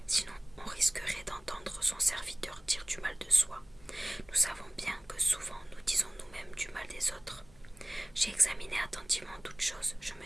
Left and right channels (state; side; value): noise; left; hum, 25 dB below the sound